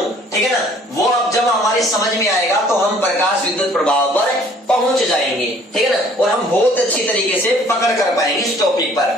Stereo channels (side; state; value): both; normal; correlation 0.56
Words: ठीक है ना। वो अब जब हमारे समझ में आएगा तो हम प्रकाश विद्युत प्रभाव पर पहुंच जाएंगे, ठीक है ना, और हम बहुत अच्छी तरीके से पकड़ कर पाएंगे इस टॉपिक पर।